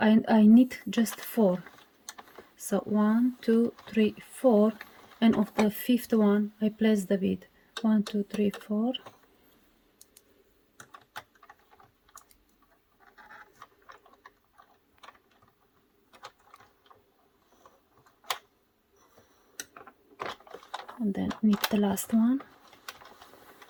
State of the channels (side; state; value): both; identical; correlation 1.00